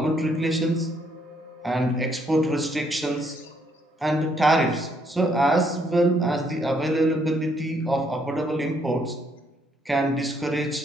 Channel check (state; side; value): normal; both; correlation 0.70